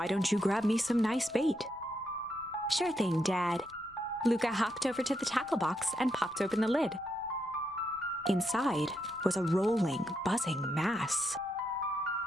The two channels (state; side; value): noise; left; rumble, 27 dB below the sound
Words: don't you grab me some nice bait? Sure thing, Dad. Luka hopped over to the tackle box and popped open the lid. Inside was a rolling, buzzing mass.